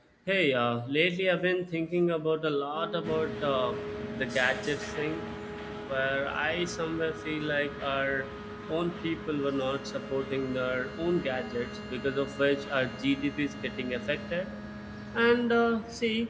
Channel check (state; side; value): identical; both; correlation 1.00